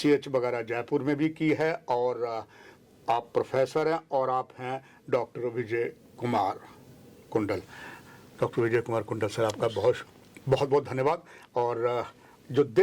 वगैरह जयपुर में भी की है, और आप प्रोफेसर हैं और आप हैं डॉक्टर विजय कुमार कुंडल। डॉक्टर विजय कुमार कुंडल सर, आपका बहुत बहुत धन्यवाद। और जो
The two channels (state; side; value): identical; both; correlation 1.00